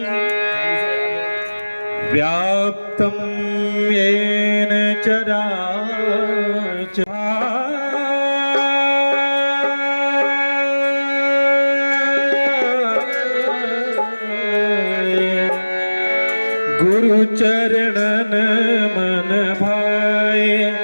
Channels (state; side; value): inverted; both; correlation -1.00